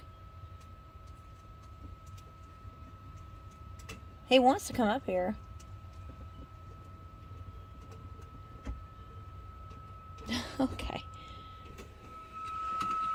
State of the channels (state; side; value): identical; both; correlation 1.00